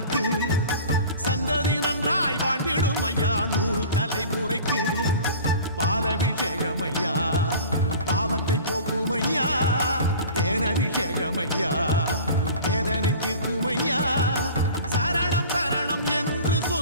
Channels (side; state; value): both; inverted; correlation -0.40